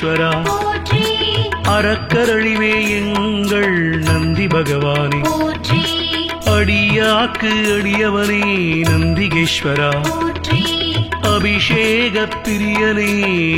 போற்றி அறக்கரழிவே எங்கள் நந்தி பகவானே போற்றி அடியாக்கு அடியவனே நந்திகேஸ்வரா போற்றி அபிஷேக பிரியனே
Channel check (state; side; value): identical; both; correlation 1.00